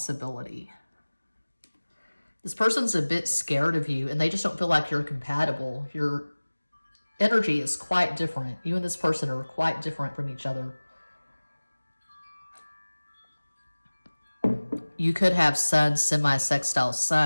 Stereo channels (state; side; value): inverted; both; correlation -1.00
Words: This person's a bit scared of you, and they just don't feel like you're compatible. Your energy is quite different. You and this person are quite different from each other. You could have Sun semi-sextile